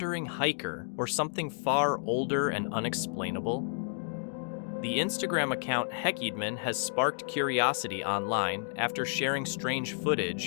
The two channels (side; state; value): right; silent; digital silence